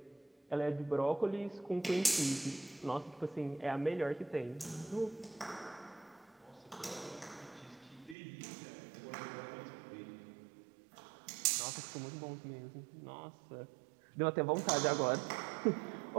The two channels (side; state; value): left; drops out; at 8.2 s